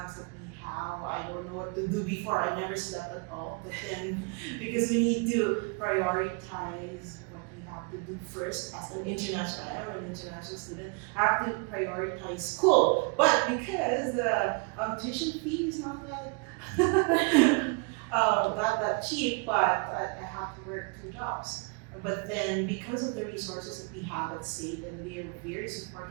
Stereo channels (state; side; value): quieter; left; 32.6 dB